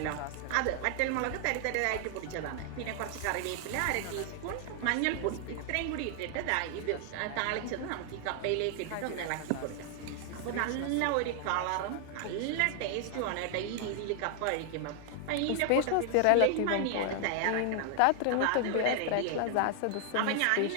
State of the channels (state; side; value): different; both; correlation 0.00